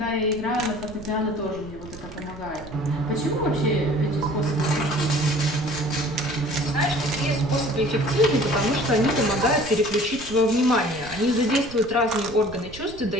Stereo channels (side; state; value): right; noise; rumble, 17 dB below the sound